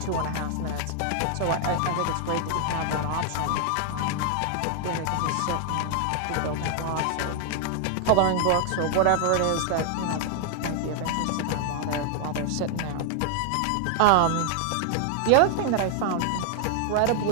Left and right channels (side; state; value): both; different; correlation 0.00